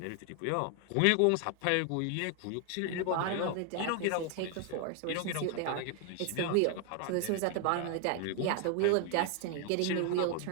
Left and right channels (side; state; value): both; different; correlation 0.00